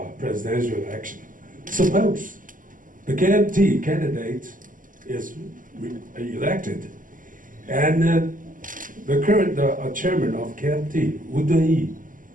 presidential election. Suppose the KMT candidate is elected and the current chairman of KMT, Wu Dunyi,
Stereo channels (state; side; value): late; left; 0.39 ms